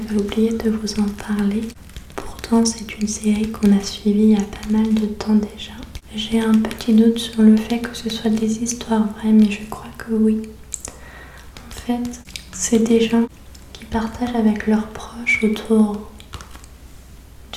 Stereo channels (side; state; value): both; identical; correlation 1.00